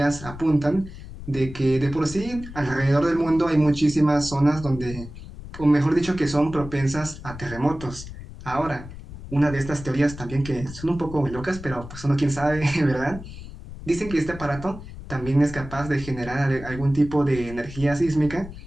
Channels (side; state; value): left; noise; rumble, 13 dB below the sound